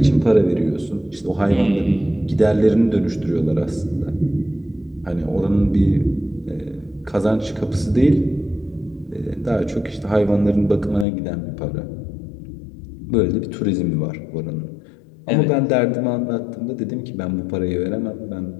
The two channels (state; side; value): drops out; right; at 11.1 s